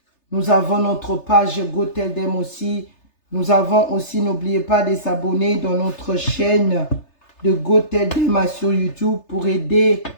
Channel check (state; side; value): late; right; 3.3 ms